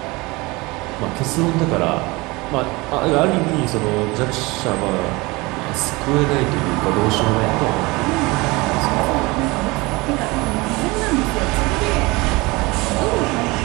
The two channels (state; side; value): quieter; left; 23.6 dB